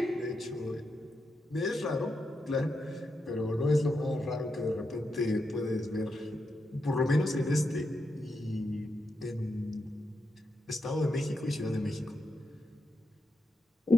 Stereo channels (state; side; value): normal; both; correlation 0.85